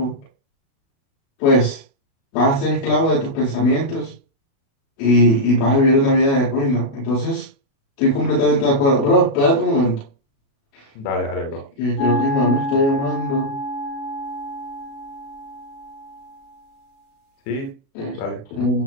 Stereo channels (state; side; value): late; right; 36 ms